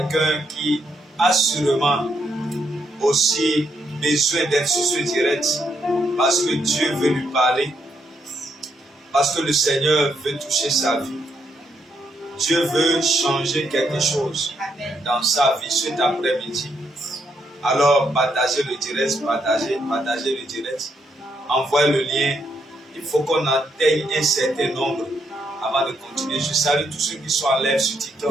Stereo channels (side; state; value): both; normal; correlation 0.77